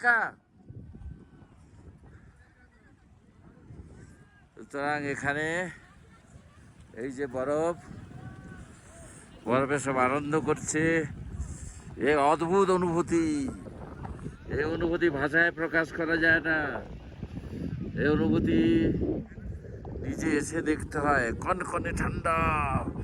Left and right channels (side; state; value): both; identical; correlation 1.00